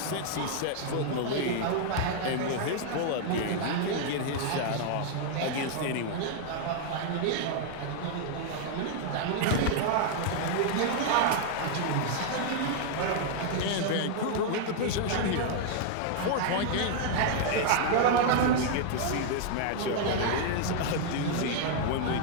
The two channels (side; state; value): both; different; correlation 0.00